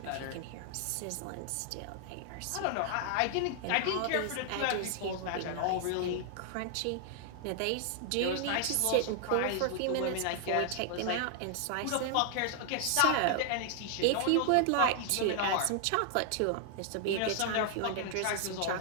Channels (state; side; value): different; both; correlation 0.00